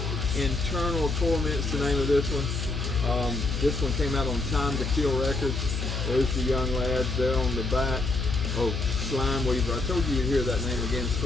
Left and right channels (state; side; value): noise; left; hum, 3 dB below the sound